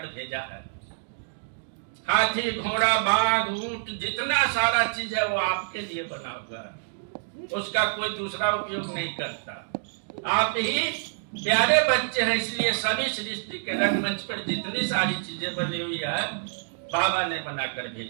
भेजा है। हाथी, घोड़ा, बाघ, ऊंट, जितना सारा चीज है वो आपके लिए बना हुआ है, उसका कोई दूसरा उपयोग नहीं करता। आप ही प्यारे बच्चे हैं, इसलिए सभी सृष्टि के रंगमंच पर जितनी सारी चीजें बनी हुई है बाबा ने बनाकर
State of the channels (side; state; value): left; silent; digital silence